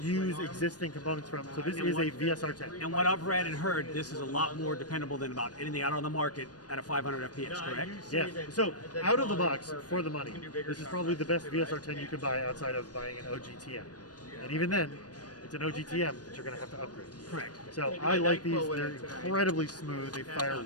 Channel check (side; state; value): right; late; 0.69 ms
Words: use existing components from. So this is a VSR-10. And what I've read and heard, this is a lot more dependable than about anything out on the market at a 500 FPS, correct? Yeah, so out of the box, for the money, this is probably the best VSR-10 you could buy outside of buying an OGTM. And even then, it's an OGTM that you're going to have to upgrade. Correct. So I like these. They're incredibly smooth. They fire